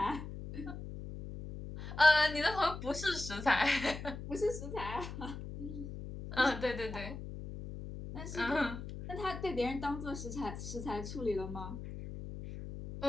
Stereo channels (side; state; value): left; noise; hum, 9 dB below the sound